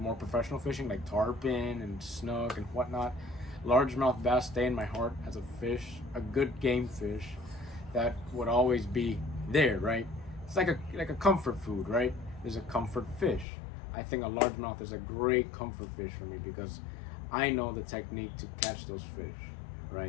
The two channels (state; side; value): drops out; right; at 13.5 s